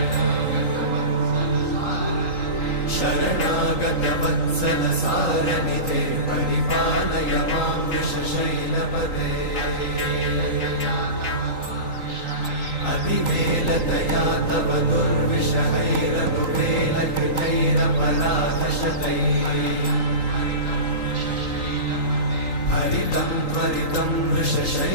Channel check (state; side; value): late; right; 3.8 ms